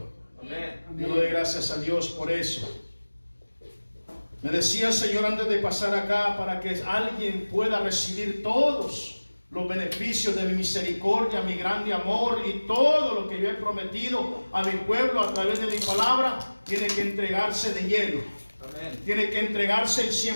Yo le doy gracias a Dios por eso. Me decía el Señor antes de pasar acá, para que alguien pueda recibir todos los beneficios de mi misericordia, mi grande amor y todo lo que yo he prometido a mi pueblo a través de mi palabra, tiene que entregarse de lleno. Amén. Tiene que entregarse el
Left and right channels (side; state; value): both; inverted; correlation -1.00